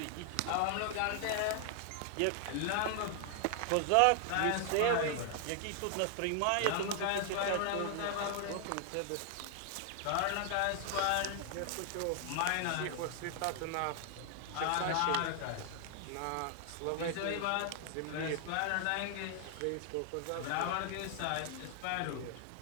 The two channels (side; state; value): both; different; correlation 0.00